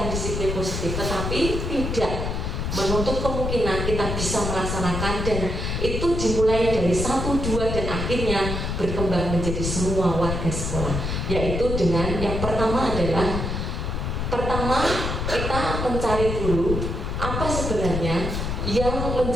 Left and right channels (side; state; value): left; noise; rumble, 2 dB below the sound